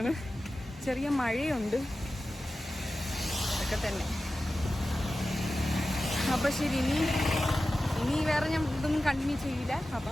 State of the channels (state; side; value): normal; both; correlation 0.94